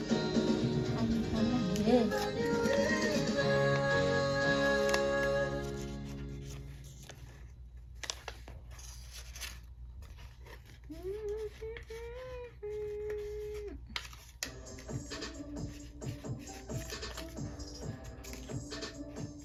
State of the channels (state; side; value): identical; both; correlation 1.00